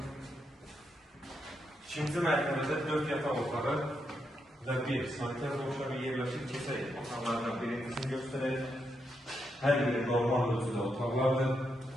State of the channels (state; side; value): normal; both; correlation 0.82